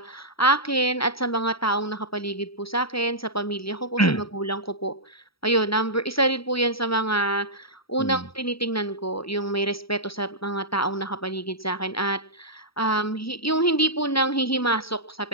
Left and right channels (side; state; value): right; late; 0.75 ms